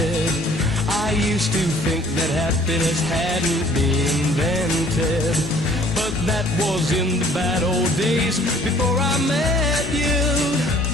I used to think that happiness hadn't been invented, but that was in the bad old days before I met you.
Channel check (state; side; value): normal; both; correlation 0.56